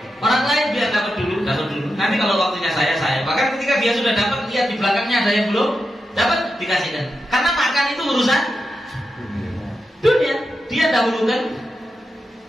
biar dapat dulu. Nanti kalau waktunya saya. Bahkan ketika dia sudah dapat, lihat di belakangnya ada yang belum dapat, dikasihkan. Karena makan itu urusan dunia, dia dahulukan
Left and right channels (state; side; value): normal; both; correlation 0.88